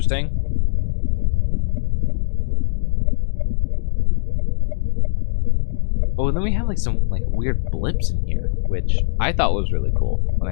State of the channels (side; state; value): right; silent; digital silence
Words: Oh, and then we have some weird blips in here, which I thought was really cool when